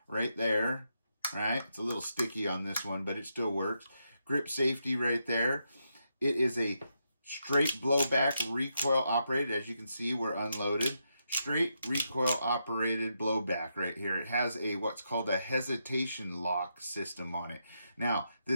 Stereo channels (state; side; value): inverted; both; correlation -0.82